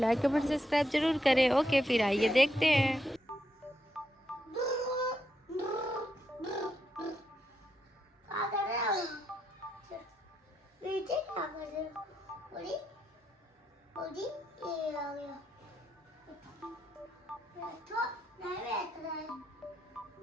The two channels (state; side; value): normal; both; correlation 0.81